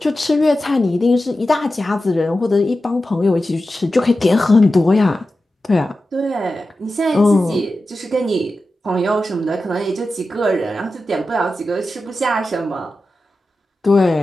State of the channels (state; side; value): normal; both; correlation 0.93